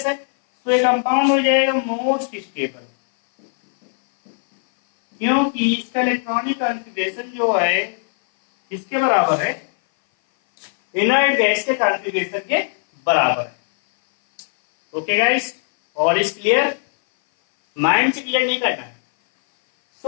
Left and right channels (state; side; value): silent; right; 59 dB below the other